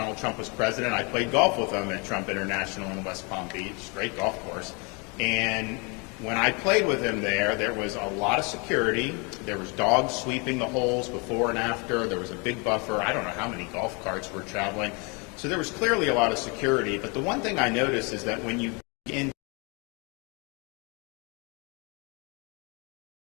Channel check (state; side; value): quieter; right; 31.4 dB